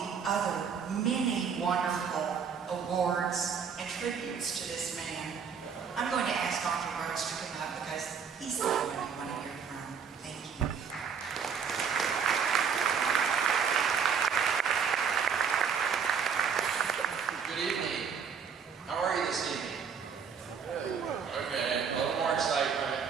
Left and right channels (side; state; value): left; quieter; 6.7 dB